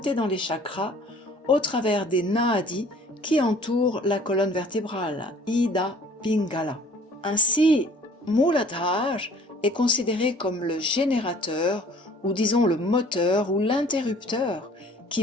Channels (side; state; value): both; normal; correlation 0.53